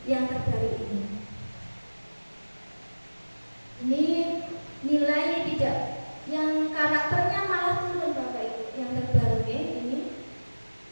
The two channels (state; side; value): inverted; both; correlation -1.00